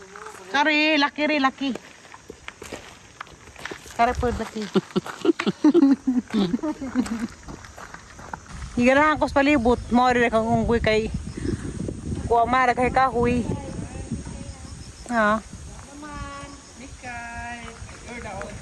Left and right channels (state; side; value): identical; both; correlation 1.00